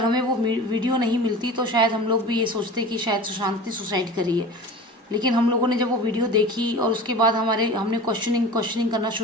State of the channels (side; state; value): both; normal; correlation 0.36